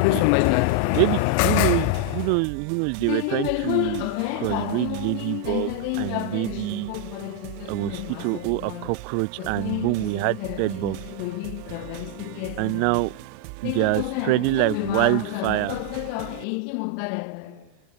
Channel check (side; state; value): both; different; correlation 0.00